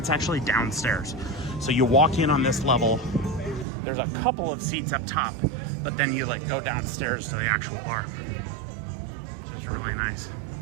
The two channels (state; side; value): drops out; left; at 3.7 s